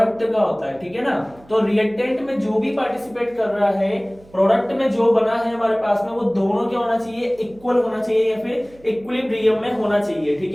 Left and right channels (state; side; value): noise; right; hum, 26 dB below the sound